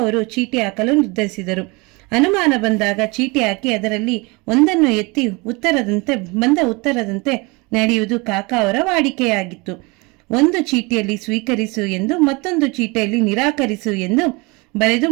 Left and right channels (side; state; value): left; quieter; 26.7 dB